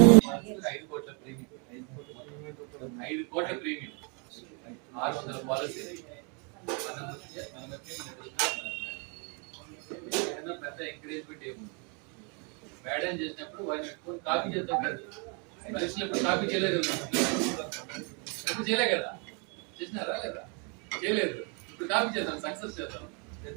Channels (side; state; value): left; quieter; 35.3 dB